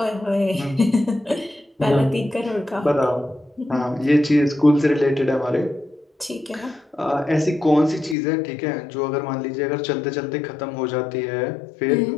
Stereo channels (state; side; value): drops out; right; at 8.2 s